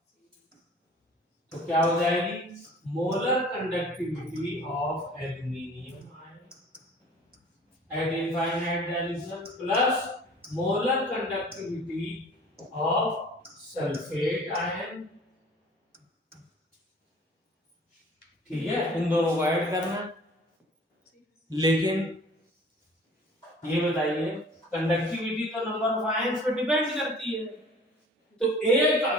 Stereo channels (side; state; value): both; normal; correlation 0.48